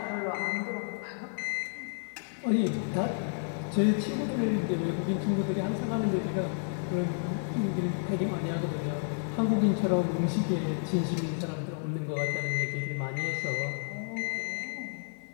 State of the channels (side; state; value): right; silent; 57 dB below the other